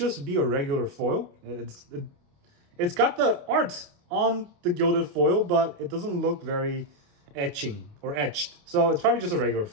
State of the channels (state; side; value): late; left; 28 ms